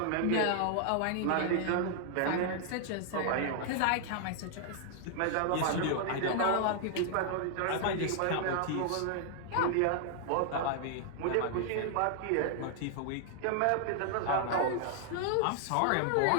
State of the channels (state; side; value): different; both; correlation 0.00